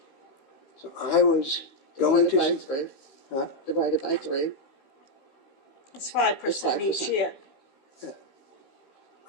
So I was going Divided by to... three. Huh? Divided by 3. It's 5% each 5%. year.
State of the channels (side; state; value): right; late; 15 ms